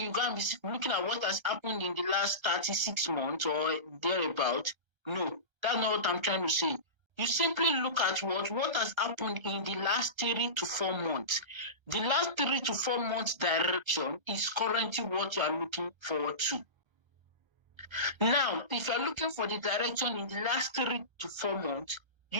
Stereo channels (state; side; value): late; left; 1.3 ms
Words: you go and be looking at what has happened in the last 36 months or thereabout. No, that's not what I'm trying to say. You simply look at what has happened in the last 3 to 4 months. The last 3 to 4 months direction is currently what you are looking forward to. Now, if you're looking for the direction in the last 3 to 4 months,